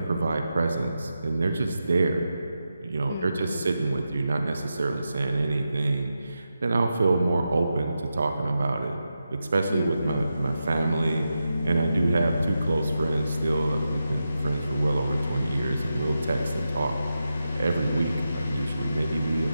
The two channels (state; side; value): inverted; both; correlation -0.89